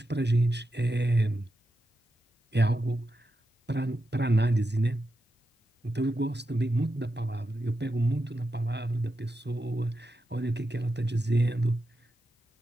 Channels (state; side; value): normal; both; correlation 0.88